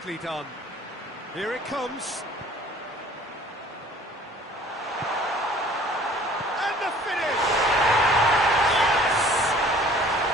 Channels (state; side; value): normal; both; correlation 0.52